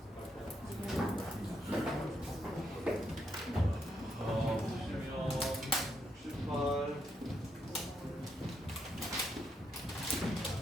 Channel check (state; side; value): normal; both; correlation 0.78